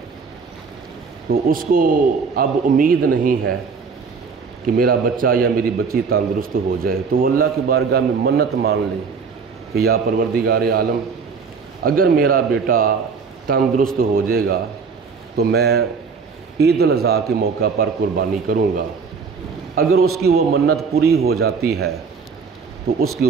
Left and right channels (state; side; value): quieter; left; 5.4 dB